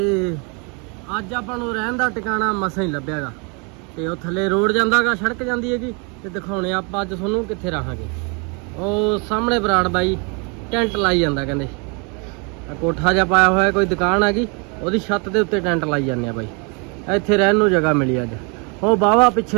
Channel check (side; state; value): left; quieter; 33.7 dB